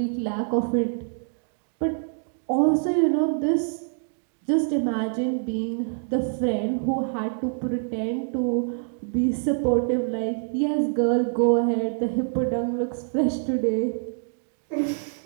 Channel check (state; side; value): silent; left; digital silence